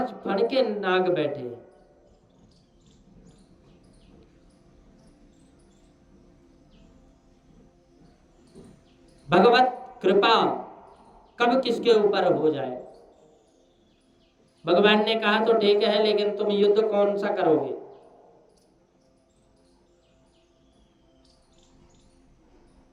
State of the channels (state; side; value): identical; both; correlation 1.00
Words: फण के नाग बैठे हैं। भगवत कृपा कब किसके ऊपर हो जाए। भगवान ने कहा तो ठीक है, लेकिन तुम युद्ध कौन सा करोगे?